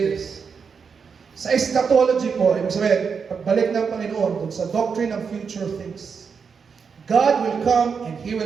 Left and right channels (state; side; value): quieter; left; 5.9 dB